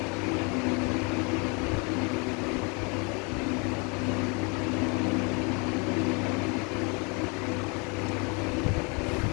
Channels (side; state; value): right; quieter; 31.9 dB